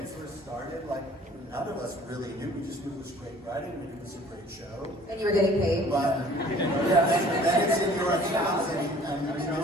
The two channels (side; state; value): both; normal; correlation 0.52